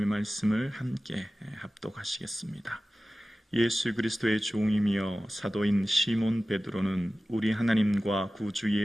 말씀을 함께 합독하시겠습니다. 예수 그리스도의 종이며 사도인 시몬 베드로는 우리 하나님과 구주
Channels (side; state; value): both; normal; correlation 0.96